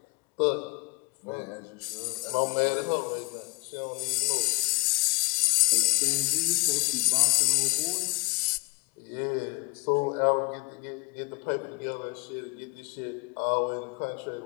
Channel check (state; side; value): quieter; right; 29.5 dB